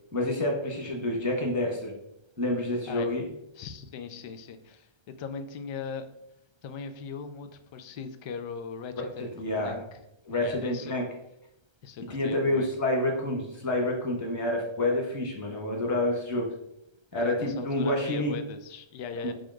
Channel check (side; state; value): left; late; 1.3 ms